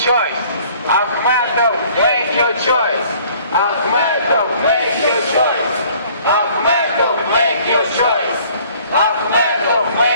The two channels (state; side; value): inverted; both; correlation -0.56